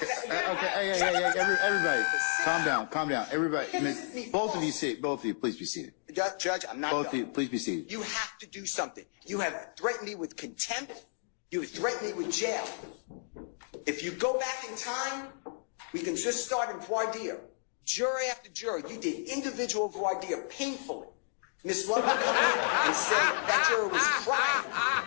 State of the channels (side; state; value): right; silent; digital silence